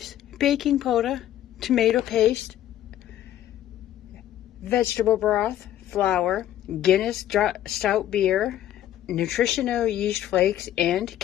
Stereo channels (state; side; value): quieter; right; 12.3 dB